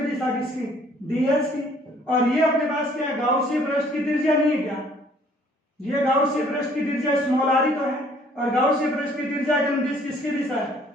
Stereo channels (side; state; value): both; normal; correlation 0.59